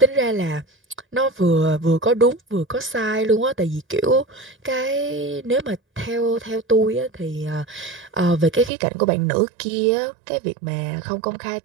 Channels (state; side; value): drops out; left; at 8.7 s